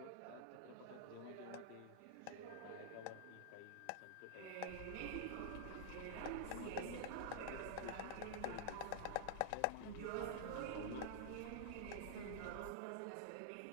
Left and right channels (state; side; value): different; both; correlation -0.01